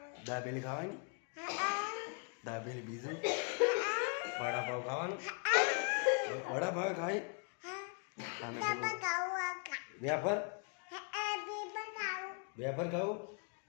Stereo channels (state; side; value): quieter; right; 39.8 dB